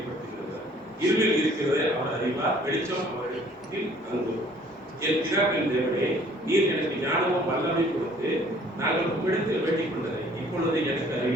இருளில் இருக்கிறதை அவர் அறிவார், வெளிச்சம் அவரிடத்தில் தங்கும். என் பிதாவின் தேவனே, நீர் எனக்கு நாங்கள் உம்மிடத்தில் வேண்டிக் கொண்டதை இப்பொழுது எனக்கு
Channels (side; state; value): both; normal; correlation 0.56